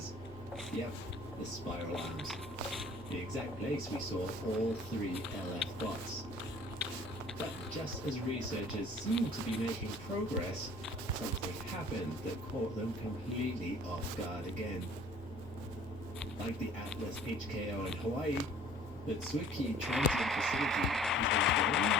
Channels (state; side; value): normal; both; correlation 0.52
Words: Yep, the spiral arms. The exact place we saw all 3 LF bots. But just as researchers seemed to be making progress, something happened that caught them completely off guard again. Like the Atlas HKO in Hawaii, the Tsuki Transit Facility is